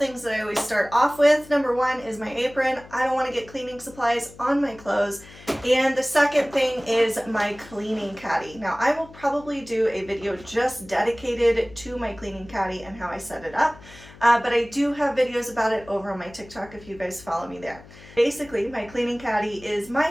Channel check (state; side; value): noise; left; hum, 20 dB below the sound